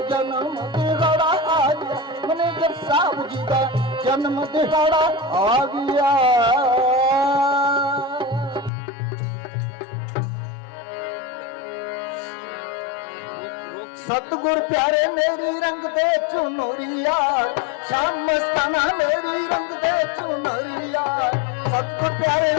जन्म दिहाड़ा आ गया, मैनेजर साहब जी दा जन्म दिहाड़ा आ गया। सतगुर प्यारे मेरी रंग दे चुनरिया, शाम मस्ताना मेरी रंग दे चुनरिया। सतगुर प्यारे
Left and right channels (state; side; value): drops out; right; at 8.7 s